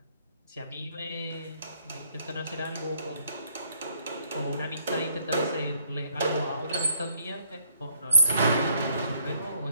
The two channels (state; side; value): inverted; both; correlation -0.67